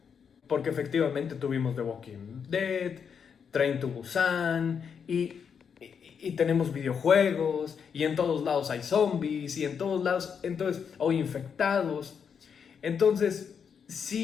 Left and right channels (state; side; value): quieter; right; 6.9 dB